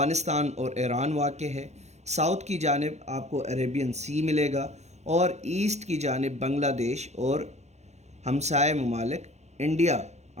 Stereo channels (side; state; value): left; late; 0.32 ms